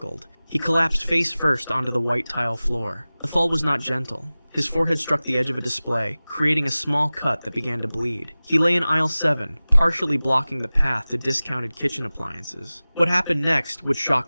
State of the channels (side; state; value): both; inverted; correlation -0.98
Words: He collapsed face first onto the white tile floor. The fall was not gentle. His forehead struck the edge of a display, creating a small cut that began to bleed. He lay in aisle 7, partially blocking the path to discounted kitchen appliances. What happened next would